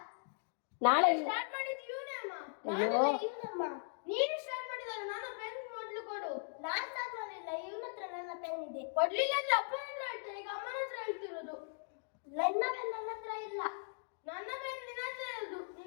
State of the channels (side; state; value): right; silent; digital silence